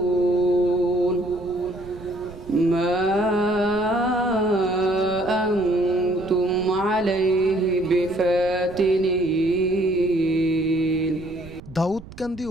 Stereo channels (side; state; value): right; noise; rumble, 17 dB below the sound